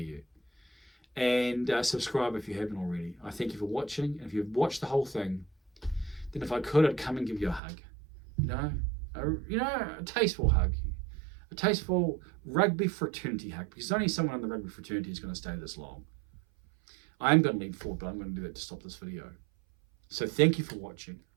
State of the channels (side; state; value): left; drops out; at 7.6 s